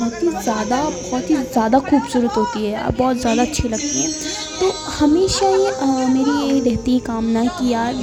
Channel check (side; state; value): both; identical; correlation 1.00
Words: ही ज़्यादा खूबसूरत होती है, बहुत ज़्यादा अच्छी लगती हैं। तो हमेशा ये मेरी ये रहती है कामना कि यार